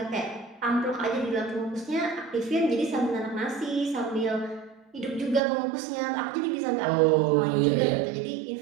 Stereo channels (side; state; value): left; drops out; at 5.4 s